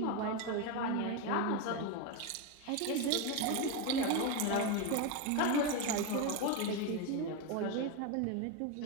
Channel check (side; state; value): both; different; correlation 0.03